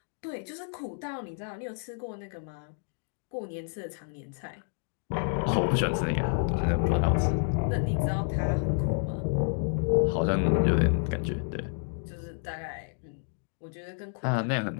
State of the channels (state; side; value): silent; right; digital silence